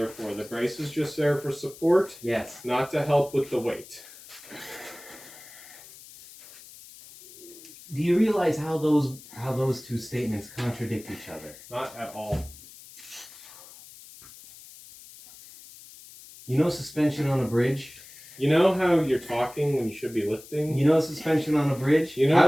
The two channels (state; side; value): noise; left; hiss, 19 dB below the sound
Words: for. The brace is just there for support, Yes. not to help with the weight. Do you realize how those two statements contradict each other? Not at all. You know suspension on a bridge? You know how you're talking when you should be lifting? You know suspension on a bridge? You know how